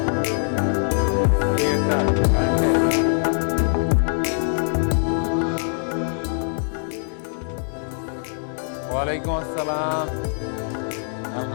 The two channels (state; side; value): silent; right; digital silence